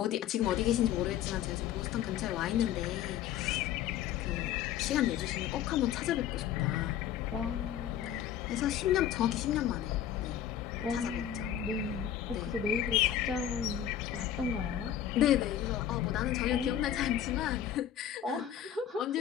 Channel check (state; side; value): quieter; right; 10.4 dB